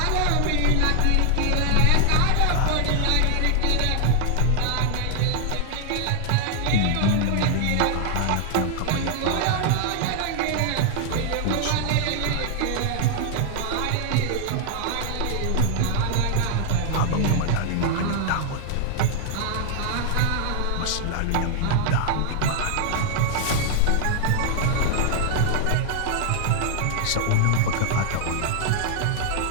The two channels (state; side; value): different; both; correlation 0.00